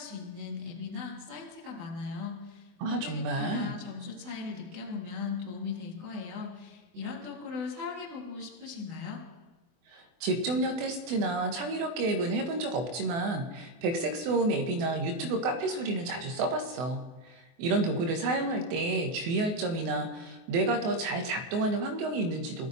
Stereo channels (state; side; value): late; left; 24 ms